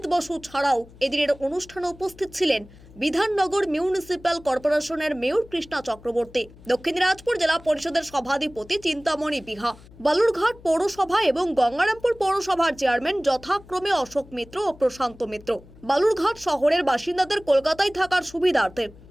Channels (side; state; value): left; noise; hum, 22 dB below the sound